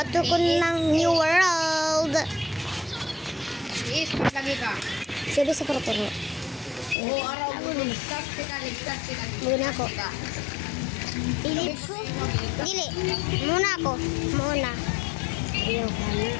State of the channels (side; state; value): right; drops out; at 7.0 s